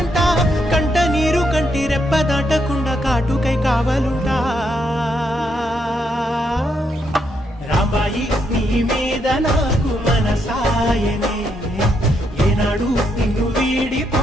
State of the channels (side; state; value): both; normal; correlation 0.78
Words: కంట నీరు కంటి రెప్ప దాటకుండా కాటుకై కావలుంటా. రాంబాయి నీ మీద నాకు మనసాయనే, ఏనాడు నిన్ను